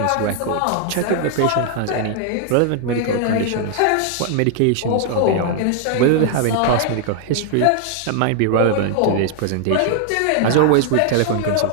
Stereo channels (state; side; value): different; both; correlation 0.00